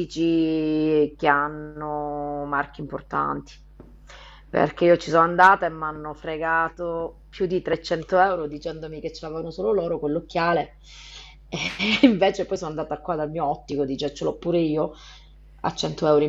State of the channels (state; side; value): identical; both; correlation 1.00